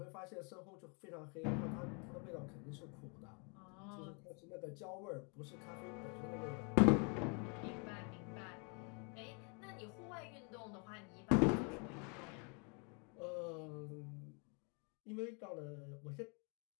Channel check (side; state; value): right; quieter; 35.9 dB